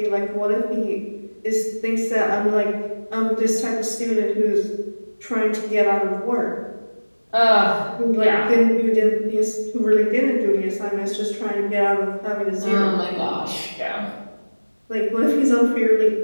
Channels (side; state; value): both; inverted; correlation -1.00